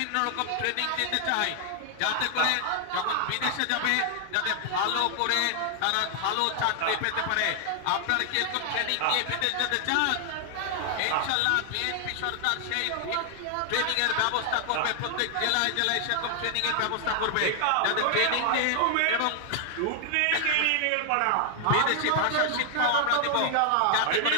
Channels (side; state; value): both; different; correlation 0.00